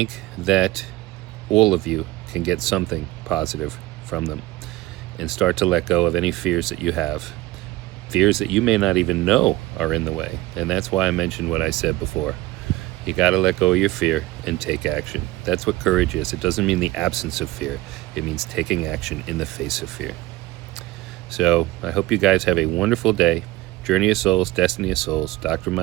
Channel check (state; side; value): quieter; left; 18.3 dB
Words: that all of you can get something positive from them and start to let go of any fears that you have, fears that you may not even know are in the way. And that's why I mentioned what I said before. You got to let go of your fear and take action. That's what courage is. It doesn't mean the absence of fear. It means taking action in the face of fear. So I hope you guys have a wonderful day. Journey of Souls, Destiny of Souls, Dr.